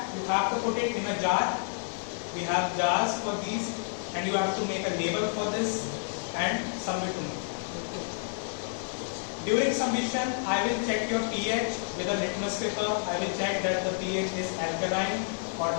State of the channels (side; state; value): right; silent; digital silence